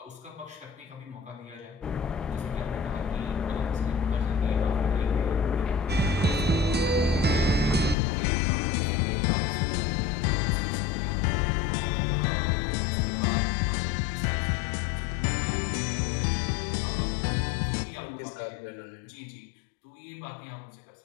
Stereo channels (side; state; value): right; drops out; at 8.0 s